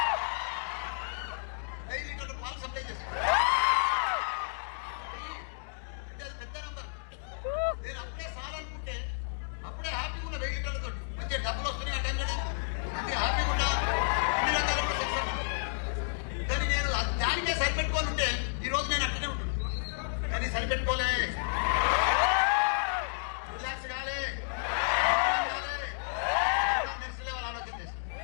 పాలు సప్లై చేస్తాను, అంటే అది పెద్ద నంబర్. నేను అప్పుడే సాలనుకుంటే అప్పుడే హ్యాపీగా ఉన్న 1000 లీటర్లతో మంచిగా డబ్బులు వస్తున్నాయి. ఆ టైంలో మంచి హ్యాపీగా ఉన్నా, అన్ని రకాల సక్సెస్. కానీ నేను దానికే సరిపెట్టుకొని ఉంటే ఈరోజు నేను అక్కడే ఉంటుంది. కానీ సరిపెట్టుకోలే,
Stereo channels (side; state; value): right; silent; digital silence